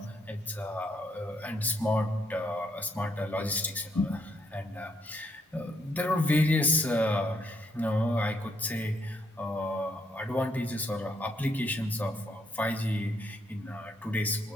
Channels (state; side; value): normal; both; correlation 0.72